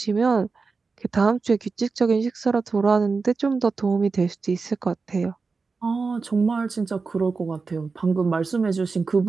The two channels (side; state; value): left; quieter; 4.4 dB